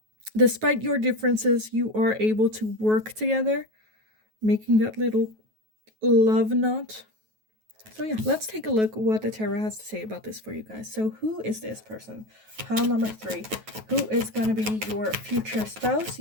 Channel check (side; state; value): left; late; 9.3 ms